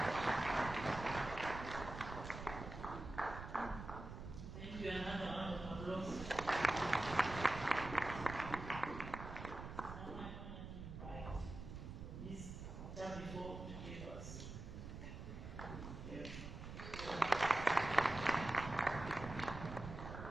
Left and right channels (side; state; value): right; noise; rumble, 9 dB below the sound